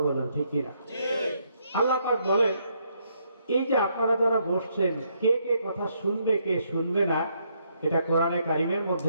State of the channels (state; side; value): inverted; both; correlation -0.74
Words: বলেন ঠিক কিনা? আল্লাহ পাক বলেন, এই যে আপনারা যারা বসছেন, কে কে কথা শুনবে কে শুনবে না, এটা কোরআনে কারিমের মধ্যে